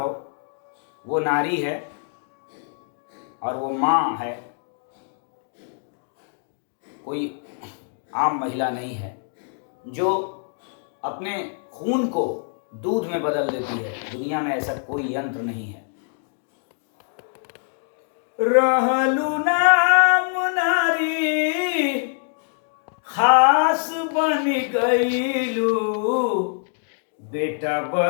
वो नारी है और वो माँ है, कोई आम महिला नहीं है, जो अपने खून को दूध में बदल देती है। दुनिया में ऐसा कोई यंत्र नहीं है। रहलू नाम नारी खास बन गईलू, बेटा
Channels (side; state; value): right; silent; digital silence